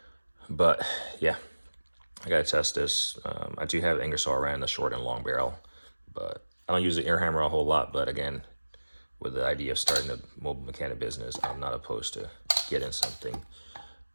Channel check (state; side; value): inverted; both; correlation -1.00